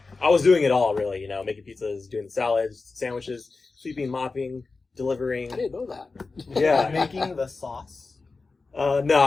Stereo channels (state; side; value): quieter; right; 4.0 dB